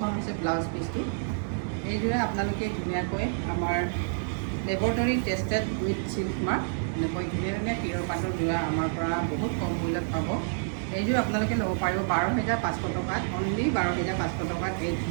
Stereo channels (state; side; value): silent; left; 59 dB below the other